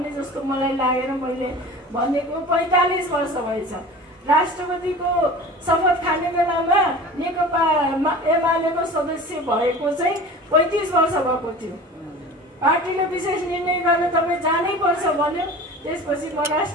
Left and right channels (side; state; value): both; normal; correlation 0.38